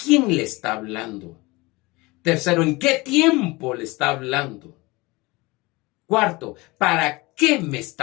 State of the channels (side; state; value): right; quieter; 23.2 dB